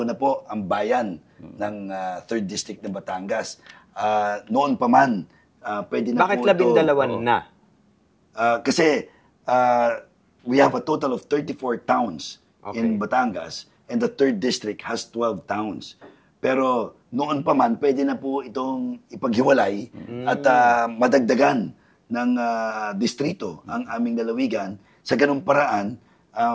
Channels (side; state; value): both; identical; correlation 1.00